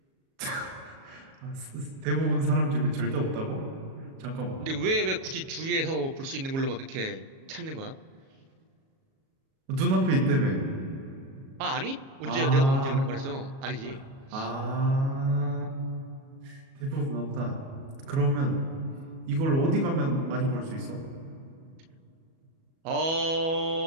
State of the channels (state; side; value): late; left; 37 ms